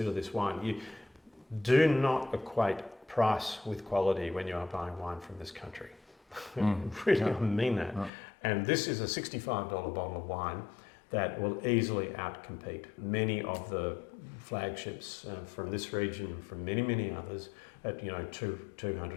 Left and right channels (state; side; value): drops out; right; at 8.1 s